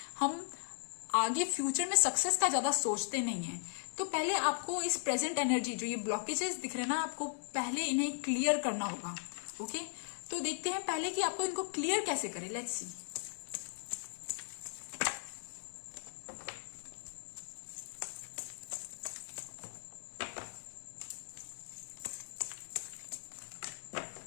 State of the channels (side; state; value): right; silent; digital silence